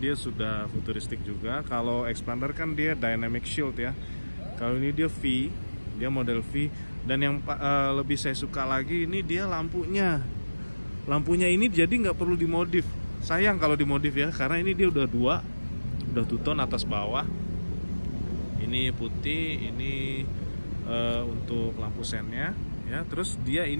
sudah futuristik juga. Kalau expander kan dia dynamic shield ya. Kalau ini dia V, dia model V. Dan yang lebih saya suka lagi ini dia lampunya. Lampunya ini jadi nggak perlu dimodif. Sayang kalau dimodif ya, karena ini dia udah two tone atas bawah. Ini putih, ini untuk lampu sennya ya. Terus dia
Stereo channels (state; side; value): inverted; both; correlation -1.00